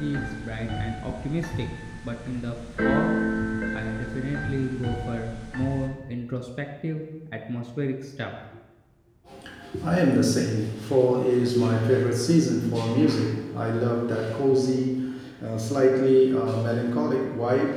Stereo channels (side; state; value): both; identical; correlation 1.00